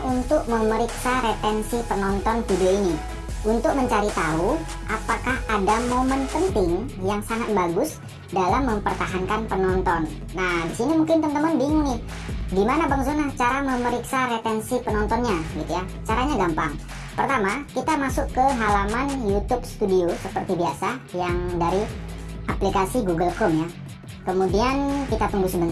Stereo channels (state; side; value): identical; both; correlation 1.00